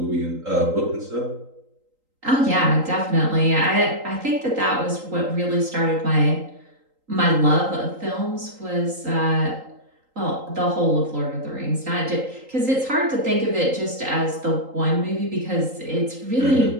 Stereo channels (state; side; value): late; left; 3.8 ms